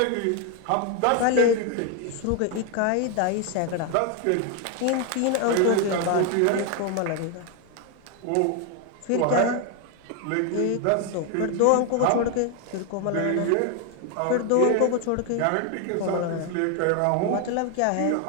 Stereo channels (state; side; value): different; both; correlation 0.01